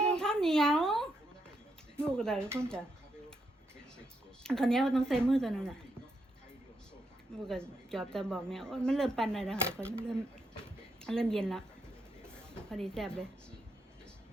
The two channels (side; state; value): both; normal; correlation 0.80